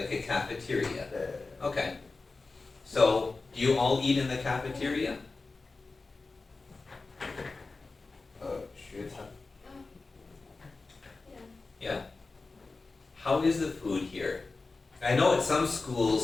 a cafeteria. Yeah. Okay. So, do you all eat in the cafeteria? 学餐. Yeah. How is the food here? I know at some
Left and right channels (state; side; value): quieter; right; 3.8 dB